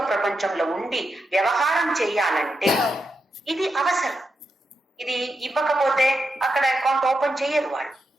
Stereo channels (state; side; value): normal; both; correlation 0.85